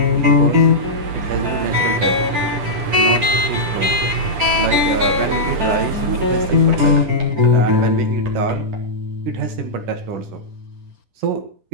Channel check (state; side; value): late; left; 10 ms